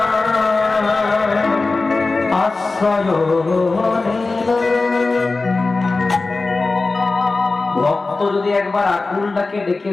ভক্ত যদি একবার আকুলটাকে ডেকে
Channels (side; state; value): right; quieter; 3.6 dB